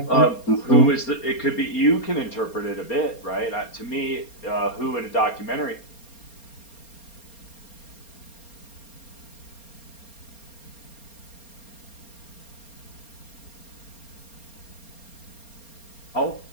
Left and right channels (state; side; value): late; right; 4.3 ms